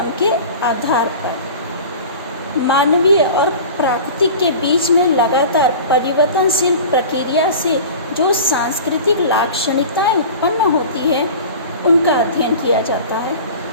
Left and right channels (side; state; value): both; inverted; correlation -0.37